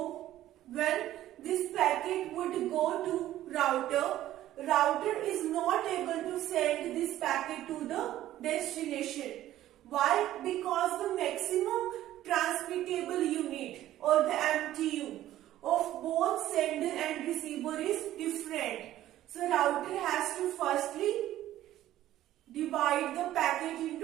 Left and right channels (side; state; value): left; quieter; 13.6 dB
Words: would go to router is not able to send this packet to the destination. Why? Because the maximum transmittable unit or the MTU of both sender and receiver is different. So router has to firstly divide the packet